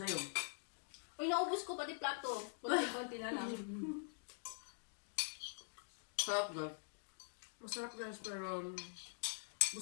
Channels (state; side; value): silent; right; digital silence